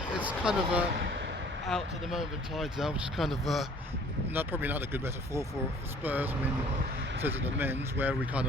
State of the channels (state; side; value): normal; both; correlation 0.53